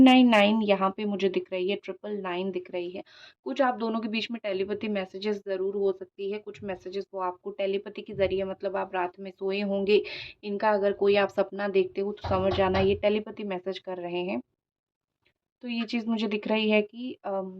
यहाँ पे मुझे दिख रही है, 999 दिख रही है। कुछ आप दोनों के बीच में टेलीपैथी मैसेजेस ज़रूर हो सकती है। कुछ मैसेजेस वो आपको टेलीपैथी के ज़रिए, मतलब आप रात में सोए होंगे, इनका अगर कोई आप सपना देखते हो तो समझ जाना ये टेलीपैथी मैसेज कर रहे हैं। तो ये चीज़ मुझे दिख रही है कि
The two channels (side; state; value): both; identical; correlation 1.00